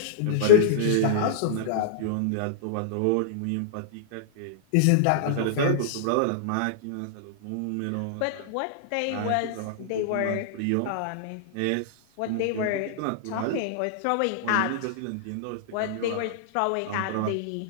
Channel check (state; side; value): different; both; correlation -0.02